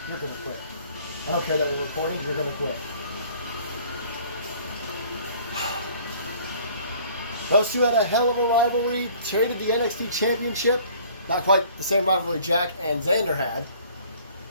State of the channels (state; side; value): inverted; both; correlation -0.54